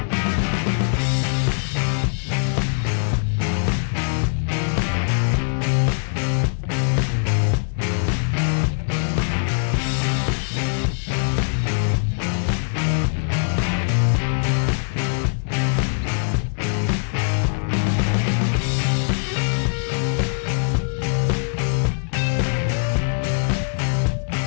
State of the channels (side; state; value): right; silent; 60 dB below the other